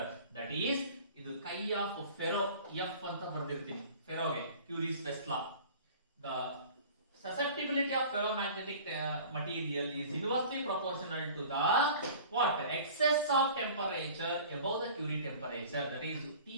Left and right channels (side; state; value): both; inverted; correlation -0.44